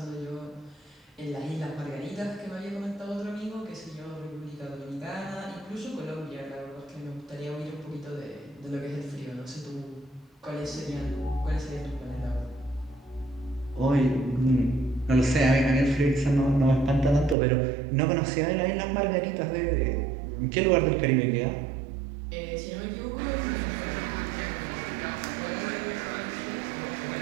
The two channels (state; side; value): drops out; left; at 17.4 s